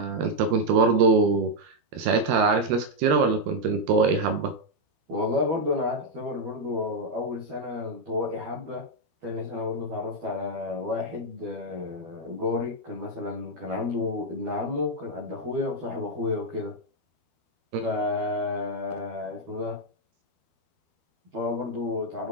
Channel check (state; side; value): late; left; 13 ms